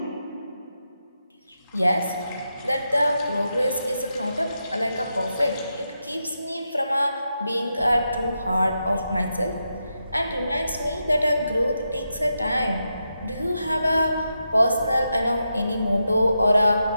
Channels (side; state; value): both; inverted; correlation -0.86